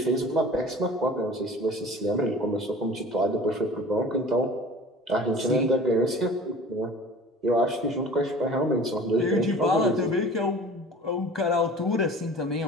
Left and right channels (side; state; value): both; normal; correlation 0.43